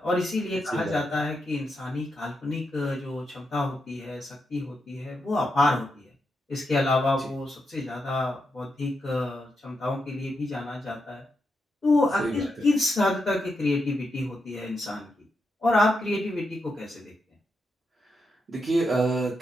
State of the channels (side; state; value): both; normal; correlation 0.85